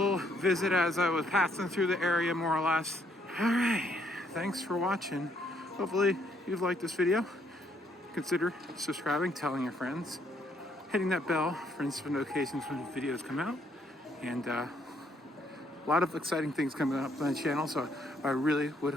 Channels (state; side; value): normal; both; correlation 0.70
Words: visit as I was passing through the area, more or less. All right, thanks for watching. Hopefully you've liked this video. Consider subscribing, telling your friends, hitting that bell for instant notifications when videos come out, and a lot of exciting things coming up on the channel. So I really would